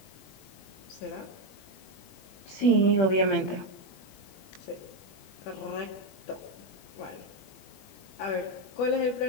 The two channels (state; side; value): late; right; 20 ms